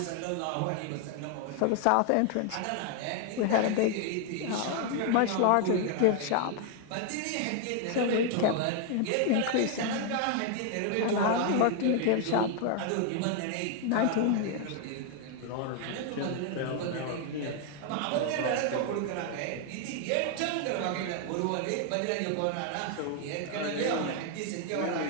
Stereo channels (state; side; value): different; both; correlation 0.00